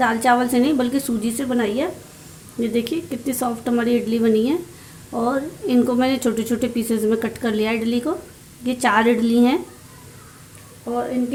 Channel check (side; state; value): both; identical; correlation 1.00